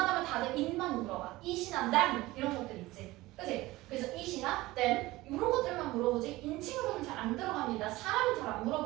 다들 it만 물어봐. it이나 them 이런 것들 있지. 그치? 그래서 it이나 them 이런 것들만 물어보지 인칭으로는 잘 안 들어갑니다. 사람은 잘 안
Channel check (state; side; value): quieter; left; 18.9 dB